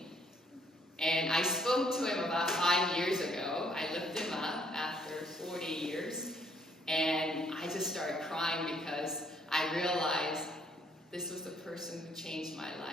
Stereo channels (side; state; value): both; normal; correlation 0.66